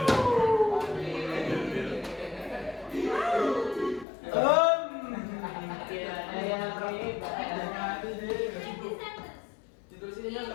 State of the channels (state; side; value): drops out; right; at 4.0 s